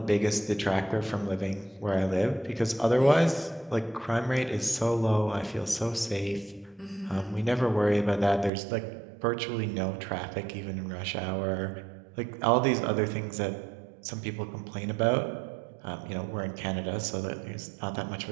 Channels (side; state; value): left; drops out; at 8.5 s